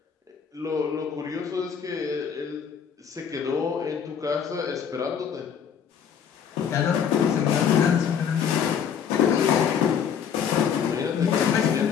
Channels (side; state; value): right; quieter; 7.6 dB